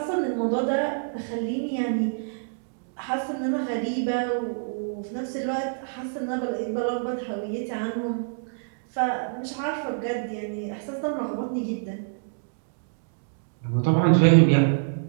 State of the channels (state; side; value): silent; left; digital silence